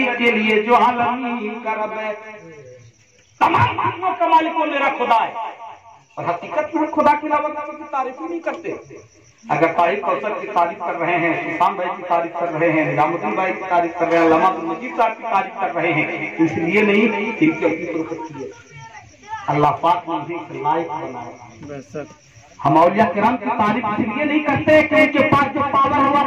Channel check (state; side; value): identical; both; correlation 1.00